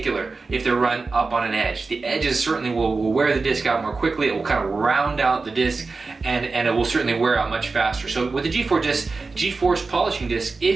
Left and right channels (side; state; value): left; quieter; 4.0 dB